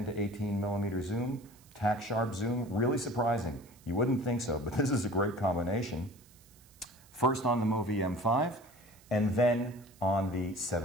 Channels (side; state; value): right; noise; hiss, 26 dB below the sound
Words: to 18 millimeter zoom, tack sharp zoom, really surprising. You wouldn't think so, but this is a great combination. First on the MoVI M5, and then on the